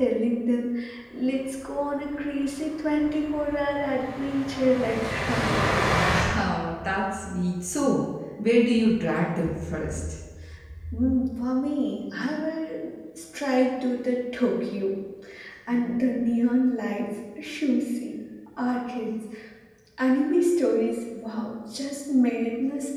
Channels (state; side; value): identical; both; correlation 1.00